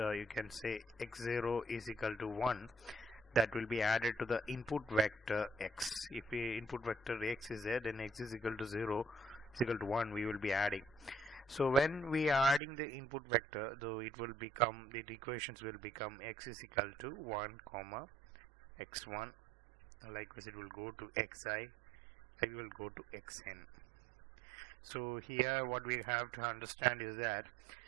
can say x0 is equal to 1. That will be added to the input vector x. If the input vector x is there, then x is equal to 0 is equal to 1. We will be adding. So when we are adding the input vector, though it will become, the equations will become x is equal to 1 comma x1. Likewise, it will go to xi. It will go to xn. So here, what we have to understand is that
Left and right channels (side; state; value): left; drops out; at 12.6 s